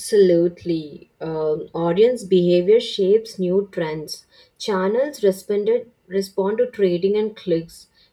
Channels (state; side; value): identical; both; correlation 1.00